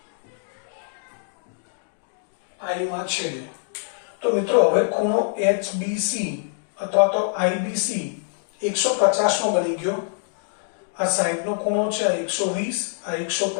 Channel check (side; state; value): right; silent; digital silence